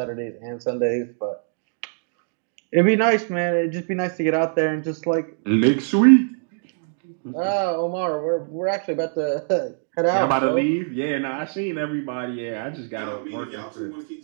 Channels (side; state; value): left; silent; 60 dB below the other